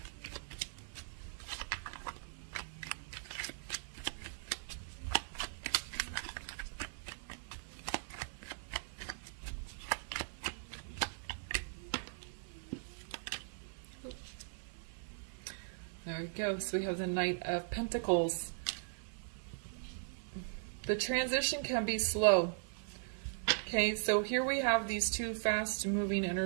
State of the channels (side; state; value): left; silent; 52 dB below the other